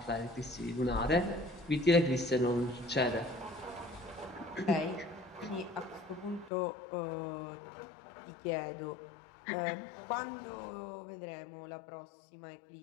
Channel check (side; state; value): right; drops out; at 6.5 s